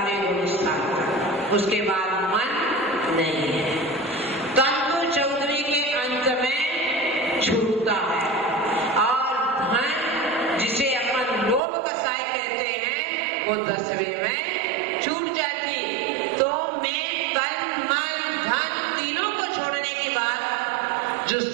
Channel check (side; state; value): left; drops out; at 11.6 s